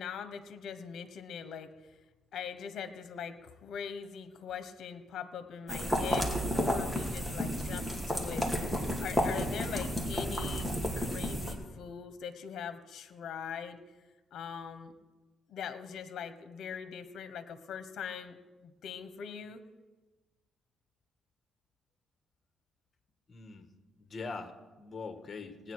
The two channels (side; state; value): both; normal; correlation 0.77